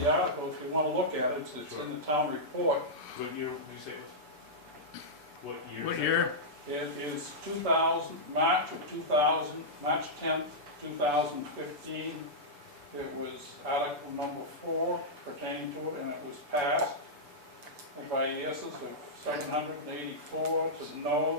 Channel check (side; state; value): left; late; 6.9 ms